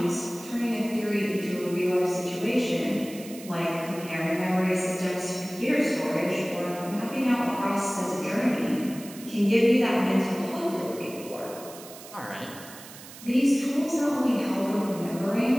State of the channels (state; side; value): noise; right; hiss, 16 dB below the sound